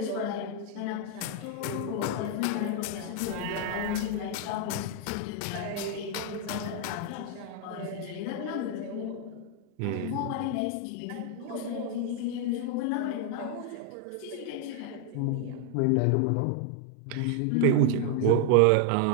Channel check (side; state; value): both; different; correlation 0.00